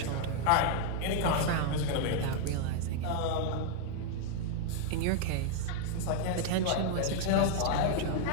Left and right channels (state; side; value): different; both; correlation 0.00